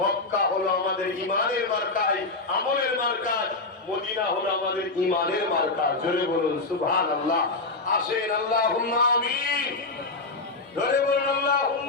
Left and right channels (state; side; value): quieter; right; 3.4 dB